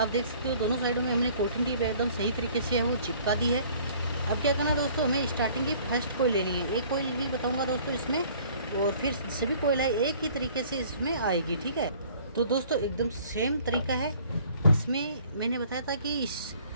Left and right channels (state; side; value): inverted; both; correlation -0.54